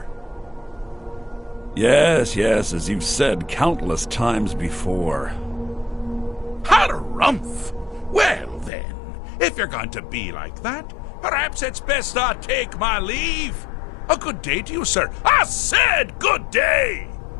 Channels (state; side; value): drops out; right; at 8.7 s